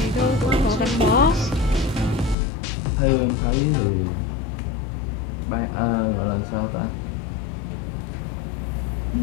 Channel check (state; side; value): drops out; right; at 2.4 s